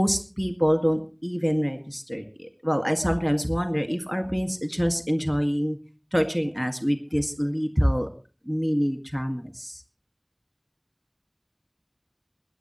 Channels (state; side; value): identical; both; correlation 1.00